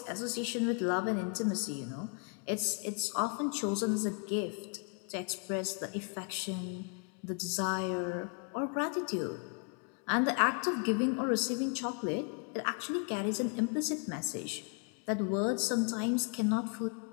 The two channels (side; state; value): right; quieter; 39.7 dB